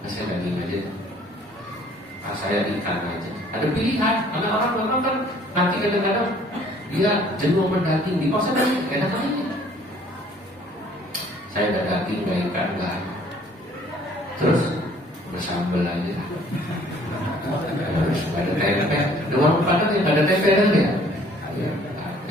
Saya daging aja. Saya ikan aja. Ada pilihan, karena orang memang kan nanti kadang-kadang dia jenuh mendaging di pasar dan enak aja. Saya ada daging, gak ikan, gak. Terus bersambel aja. Harus ada tempe. Di warung Padang yang ada tempe kan ya?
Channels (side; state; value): both; normal; correlation 0.57